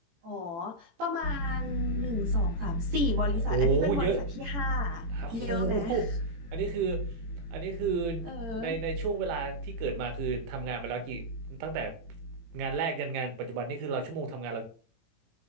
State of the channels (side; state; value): left; late; 18 ms